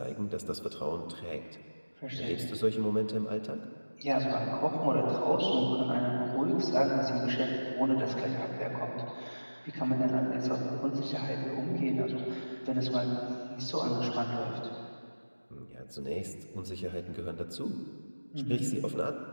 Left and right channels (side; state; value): both; inverted; correlation -1.00